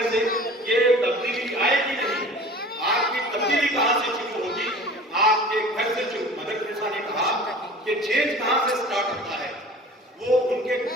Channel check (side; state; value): both; normal; correlation 0.43